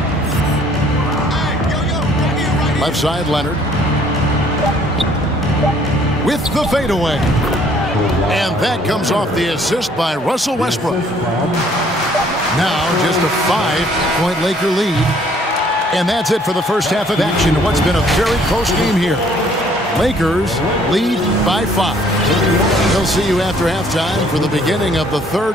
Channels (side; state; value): both; normal; correlation 0.60